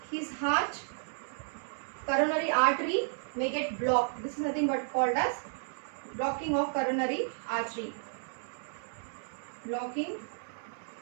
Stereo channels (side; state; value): left; silent; 56 dB below the other